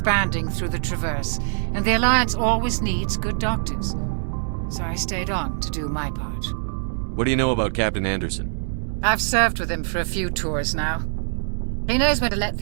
through the Traverse, and the Alliance always needs good doctors. So I stayed on to do my part. What do you know about Captain Anderson? I've served with him for a few tours now. He knows when to let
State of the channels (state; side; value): silent; left; digital silence